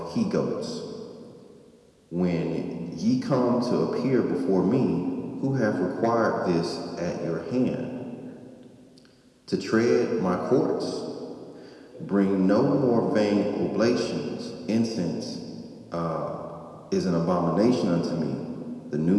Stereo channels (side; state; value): both; identical; correlation 1.00